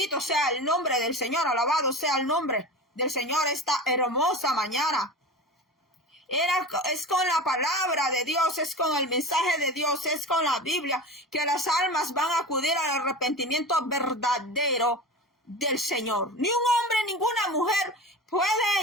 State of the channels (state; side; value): normal; both; correlation 0.31